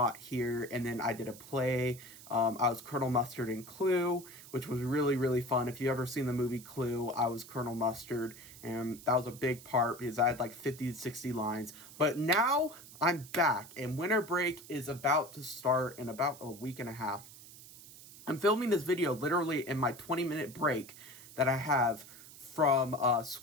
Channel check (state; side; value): noise; right; hiss, 18 dB below the sound